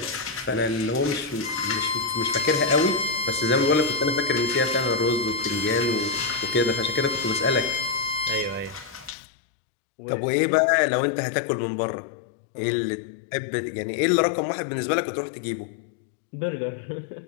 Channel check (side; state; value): right; drops out; at 9.2 s